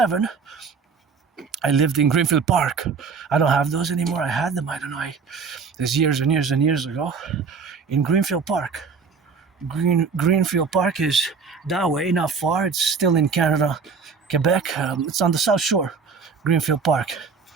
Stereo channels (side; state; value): left; quieter; 5.4 dB